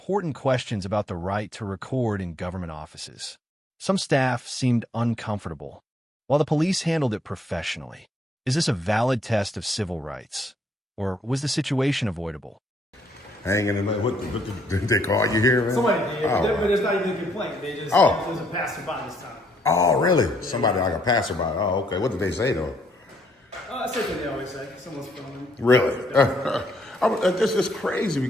questions about the right to record in government offices. Some staff seemed uncomfortable, while the police handled it professionally. Is this a valid test of civil rights? Or was the situation avoidable? Hanging in the... What did they call you here, man? Somebody did, Oh. but it's not even a complaint. They just Oh. doesn't pass them by this time. Oh, really? Somebody like a passerby. Oh, okay. What did they say though? Same thing they always say. Someone's filming. Really? This is crazy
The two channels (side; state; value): both; normal; correlation 0.70